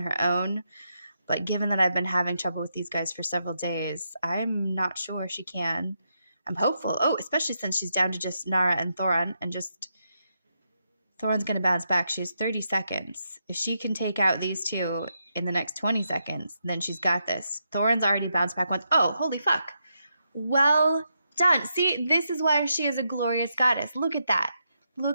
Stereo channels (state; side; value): inverted; both; correlation -0.83